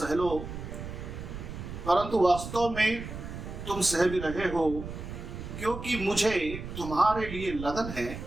लो, परंतु वास्तव में तुम सह भी रहे हो, क्योंकि मुझे तुम्हारे लिए लगन है,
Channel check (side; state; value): right; noise; rumble, 9 dB below the sound